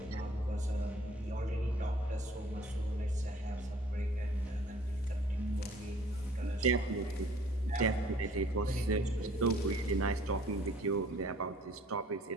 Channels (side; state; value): both; normal; correlation 0.55